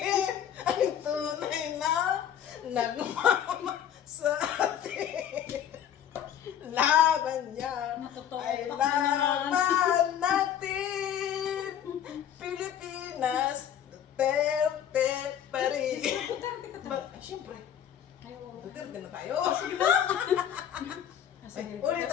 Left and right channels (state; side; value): quieter; right; 9.6 dB